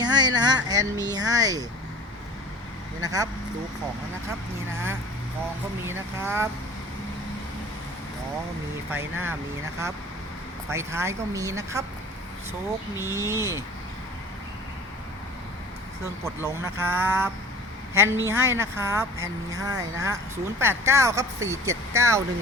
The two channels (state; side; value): normal; both; correlation 0.43